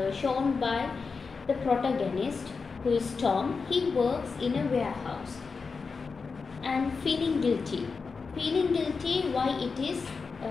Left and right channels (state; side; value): quieter; right; 4.8 dB